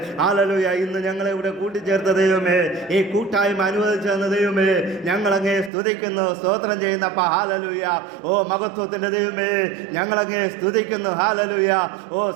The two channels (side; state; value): left; drops out; at 5.7 s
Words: ഹല്ലേലൂയ. ഇന്ന് ഞങ്ങളെ ഇവിടെ കൂട്ടിച്ചേർത്ത ദൈവമേ, ഈ കൂട്ടായ്മ അനുവദിച്ചു തന്ന ദൈവമേ, ഞങ്ങളങ്ങേ സ്തുതിക്കുന്നു, സ്തോത്രം ചെയ്യുന്നപ്പാ. ഹല്ലേലൂയ. ഓ മഹത്വത്തിന്റെ ദൈവമേ, ഞങ്ങളങ്ങേ സ്തുതിക്കുന്നു. ഹല്ലേലൂയ. ഓ